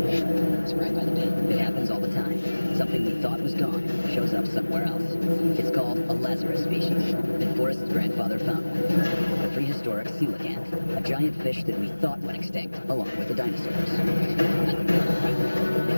It's right by the bin. It happens all the time. Something we thought was gone shows up somewhere else. It's called a Lazarus species that Forrest's grandfather found. A prehistoric coelacanth, a giant fish that we thought went extinct, along with the dinosaurs. The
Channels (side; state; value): both; inverted; correlation -1.00